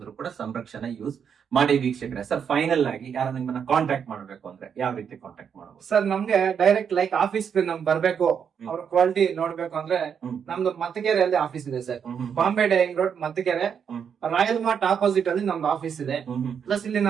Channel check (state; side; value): quieter; left; 7.4 dB